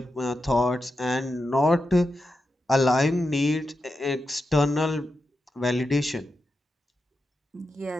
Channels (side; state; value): both; normal; correlation 0.89